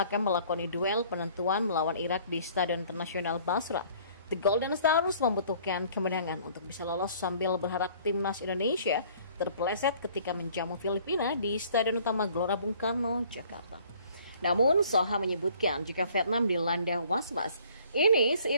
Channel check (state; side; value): inverted; both; correlation -0.55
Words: akan melakoni duel penentuan melawan Irak di Stadion Internasional Basra. The Golden Stars membutuhkan kemenangan untuk bisa lolos sambil berharap timnas Indonesia terpeleset ketika menjamu Filipina di Stadion Utama Gelora Bung Karno, Jakarta. Namun, Soha menyebutkan jika Vietnam dilanda was-was, ini